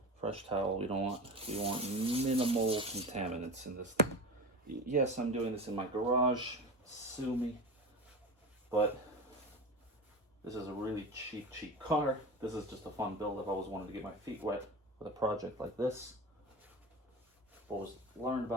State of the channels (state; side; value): normal; both; correlation 0.28